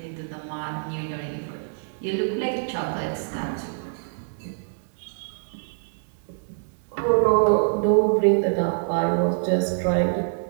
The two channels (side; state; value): left; silent; digital silence